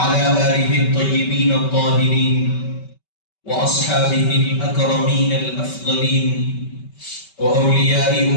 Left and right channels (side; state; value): right; late; 5.2 ms